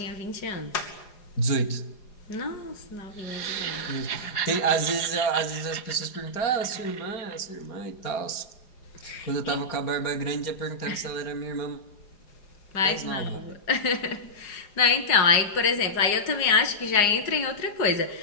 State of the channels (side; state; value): right; late; 4.9 ms